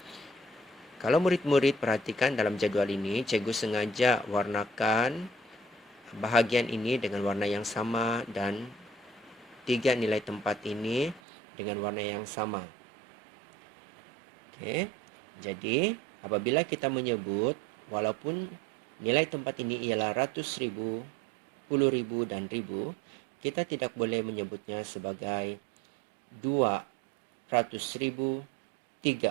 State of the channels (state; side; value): drops out; left; at 11.2 s